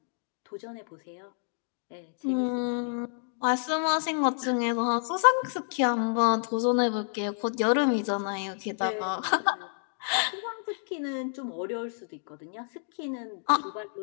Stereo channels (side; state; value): right; silent; digital silence